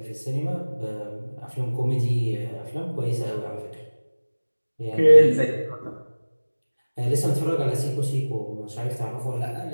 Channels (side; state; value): both; inverted; correlation -1.00